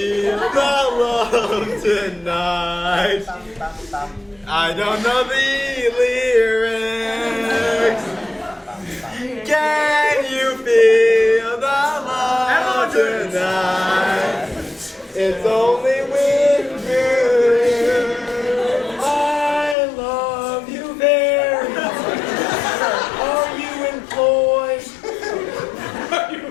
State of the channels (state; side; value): drops out; right; at 19.8 s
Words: the love tonight? I don't know the lyrics. Can you feel the love tonight? It's only with you. I love you very much. Are you employed?